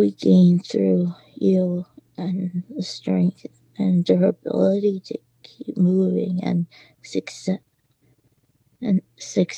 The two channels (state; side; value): identical; both; correlation 1.00